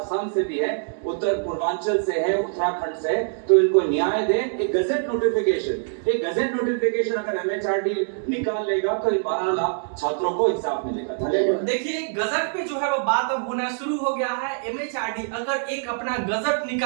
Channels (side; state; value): left; silent; digital silence